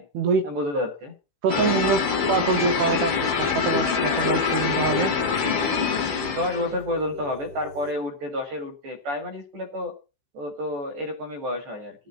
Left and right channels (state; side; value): late; left; 15 ms